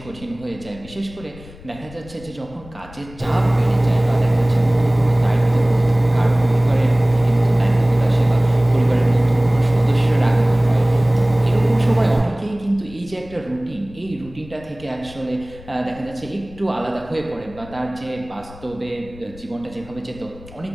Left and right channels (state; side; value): noise; left; rumble, 20 dB below the sound